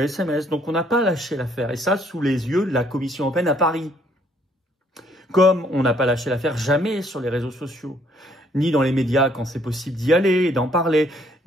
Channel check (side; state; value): both; normal; correlation 0.65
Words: SMS. Donc on n'a pas lâché l'affaire, et ça sous les yeux de la Commission européenne à Paris. Comme on n'a pas lâché l'affaire jamais sur les réseaux sociaux, ni dans les médias quand c'est possible d'y aller et d'en parler,